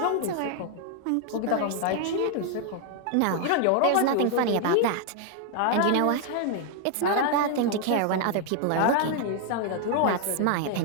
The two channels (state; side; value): different; both; correlation 0.00